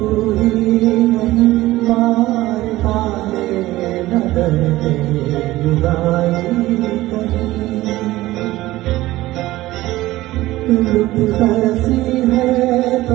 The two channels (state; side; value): quieter; left; 17.2 dB